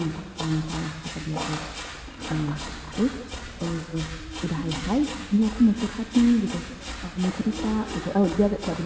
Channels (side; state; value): both; identical; correlation 1.00